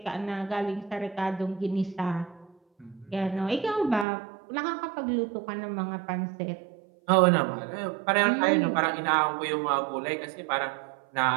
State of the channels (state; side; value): drops out; left; at 4.0 s